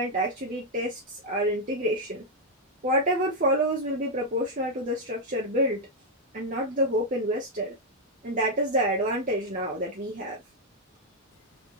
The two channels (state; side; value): normal; both; correlation -0.01